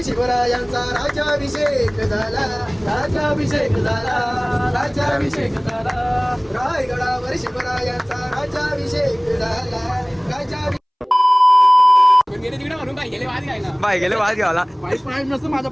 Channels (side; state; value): both; identical; correlation 1.00